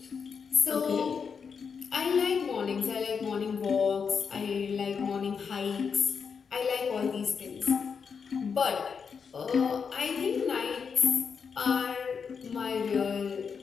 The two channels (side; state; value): right; quieter; 6.1 dB